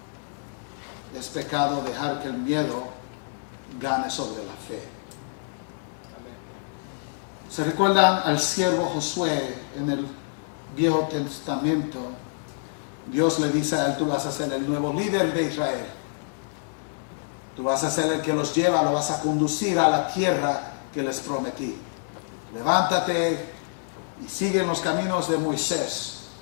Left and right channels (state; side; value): silent; right; digital silence